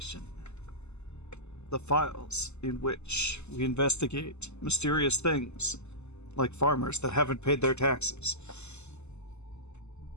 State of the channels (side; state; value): right; late; 0.81 ms